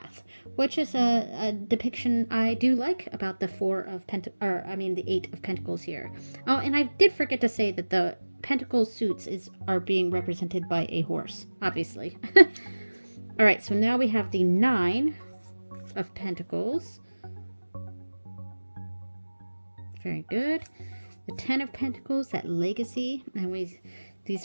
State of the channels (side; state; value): both; inverted; correlation -1.00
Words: which is a depiction I do like about the the 8 of Pentacles here. Oh, and I did forget to say that the Pentacle suits are being represented by a horse, obviously. All right, so now we have the 9 of Pentacles. Very good. The 10 of Pentacles, that legacy, and